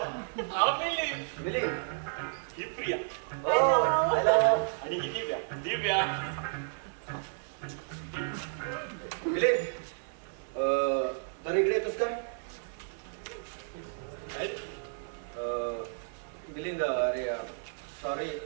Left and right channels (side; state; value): left; silent; digital silence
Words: हा मिलिंद. मिलिंद. ही प्रिया. ओ हॅलो. आणि ही दिव्या. दिव्या. मिलिंद. तर इकडे येतोस का? काय? मिलिंद, अरे सॉरी